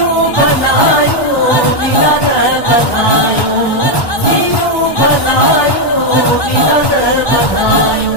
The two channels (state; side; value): late; right; 1.1 ms